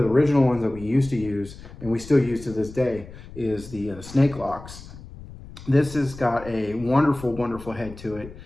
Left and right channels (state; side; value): noise; left; rumble, 16 dB below the sound